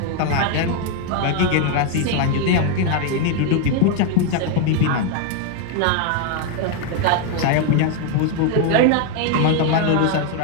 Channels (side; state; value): both; different; correlation 0.01